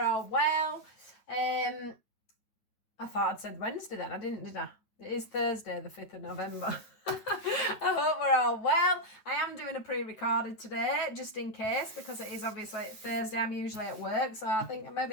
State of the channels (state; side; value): late; right; 9.2 ms